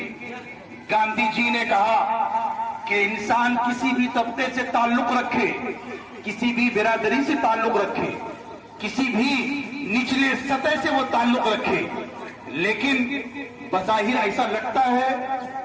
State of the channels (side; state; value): both; identical; correlation 1.00